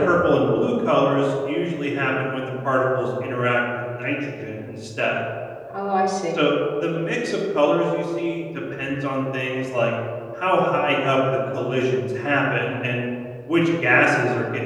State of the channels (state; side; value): identical; both; correlation 1.00